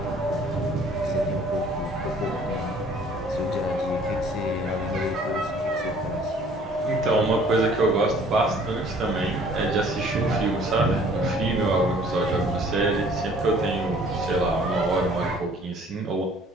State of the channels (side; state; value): both; normal; correlation 0.55